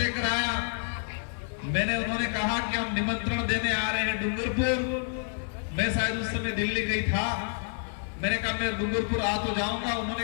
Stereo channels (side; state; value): right; silent; digital silence